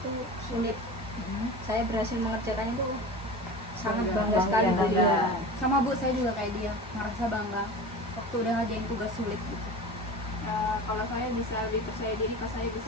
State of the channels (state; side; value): normal; both; correlation 0.33